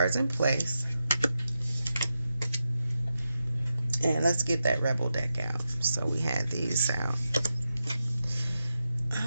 in place. And let's get that Rebel deck out. So we had these out.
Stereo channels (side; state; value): both; inverted; correlation -0.89